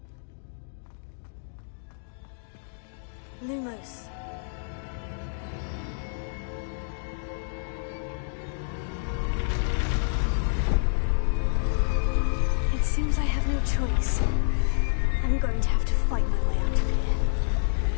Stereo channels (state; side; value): silent; right; digital silence